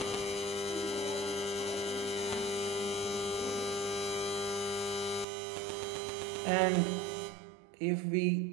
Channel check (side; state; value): left; drops out; at 5.2 s